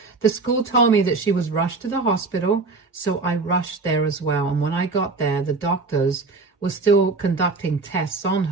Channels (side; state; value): left; quieter; 3.9 dB